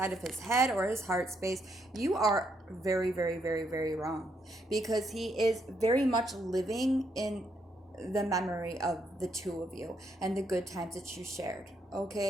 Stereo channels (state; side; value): normal; both; correlation 0.76